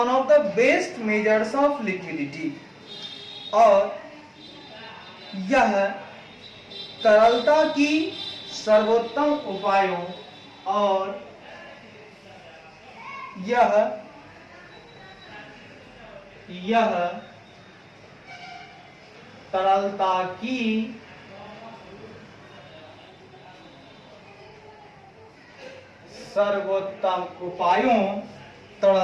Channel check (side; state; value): both; identical; correlation 1.00